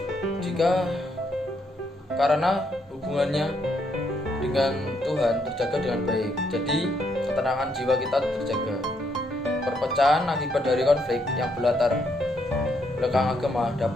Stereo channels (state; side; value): normal; both; correlation 0.75